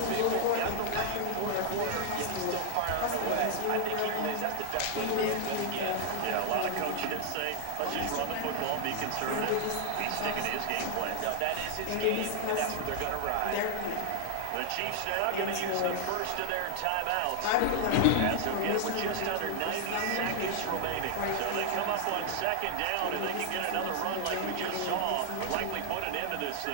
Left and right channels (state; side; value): different; both; correlation 0.00